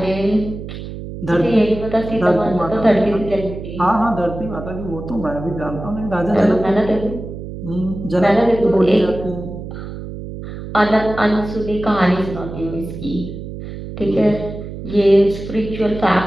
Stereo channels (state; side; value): noise; right; hum, 10 dB below the sound